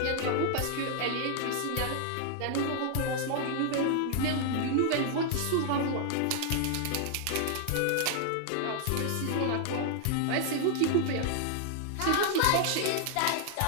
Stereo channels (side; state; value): both; different; correlation 0.00